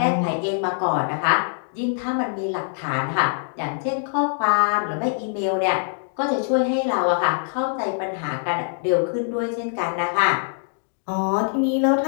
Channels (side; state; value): right; silent; digital silence